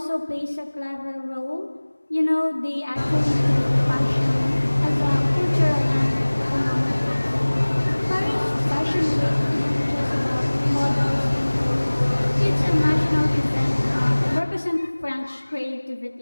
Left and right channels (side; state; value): both; inverted; correlation -1.00